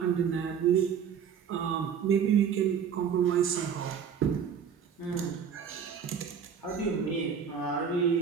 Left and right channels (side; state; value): left; quieter; 7.5 dB